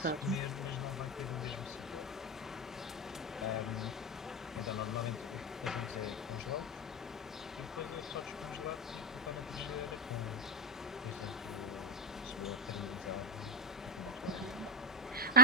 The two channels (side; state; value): both; normal; correlation 0.10